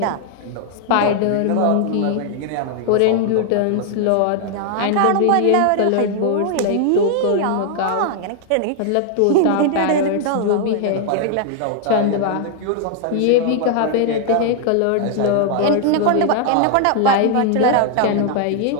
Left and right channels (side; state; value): both; different; correlation 0.00